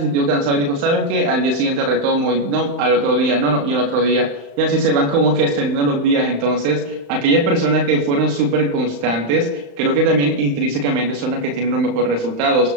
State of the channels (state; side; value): late; left; 35 ms